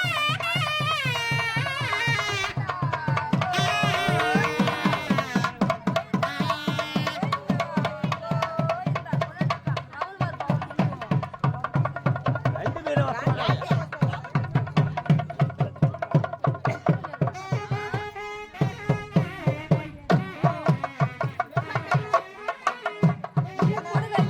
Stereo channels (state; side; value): identical; both; correlation 1.00